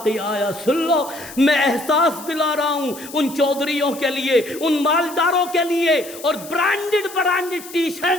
آیا، سن لو، میں احساس دلا رہا ہوں ان چودھریوں کے لیے، ان مالداروں کے لیے، اور برانڈڈ ٹی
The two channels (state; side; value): noise; left; hiss, 15 dB below the sound